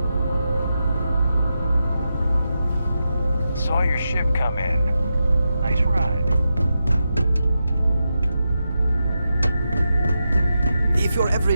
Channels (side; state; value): both; inverted; correlation -0.88